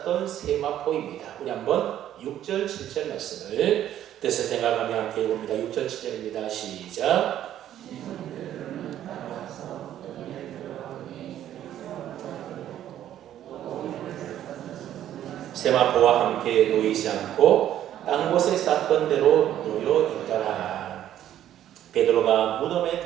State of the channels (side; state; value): left; quieter; 11.6 dB